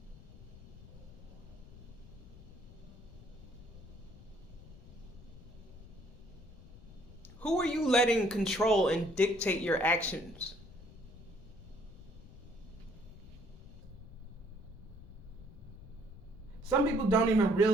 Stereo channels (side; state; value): left; noise; rumble, 17 dB below the sound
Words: Who are you letting control and dictate your actions? Some people don't even